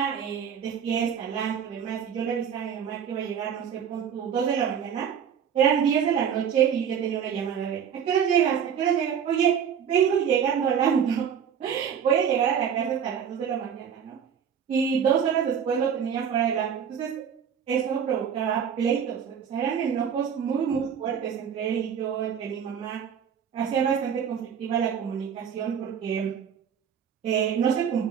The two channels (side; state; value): left; quieter; 7.9 dB